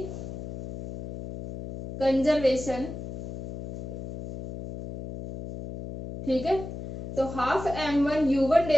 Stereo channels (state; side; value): noise; left; hum, 9 dB below the sound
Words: conservation. ठीक है, तो half m1 u1